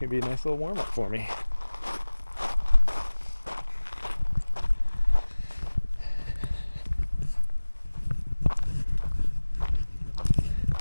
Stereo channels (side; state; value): both; inverted; correlation -1.00